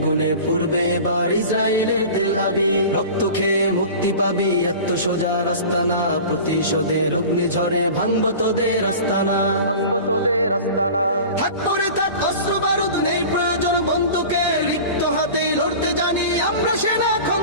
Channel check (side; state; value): both; inverted; correlation -0.37